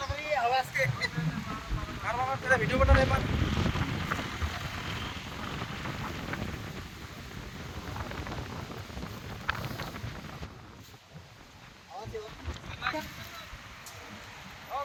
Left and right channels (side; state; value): both; identical; correlation 1.00